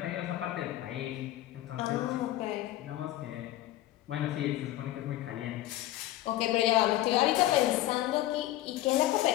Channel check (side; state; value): right; quieter; 14.8 dB